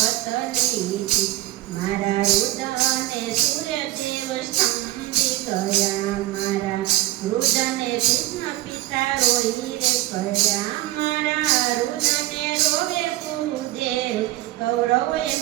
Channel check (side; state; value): left; quieter; 16.5 dB